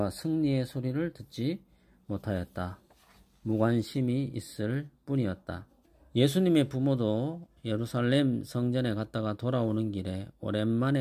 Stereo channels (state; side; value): identical; both; correlation 1.00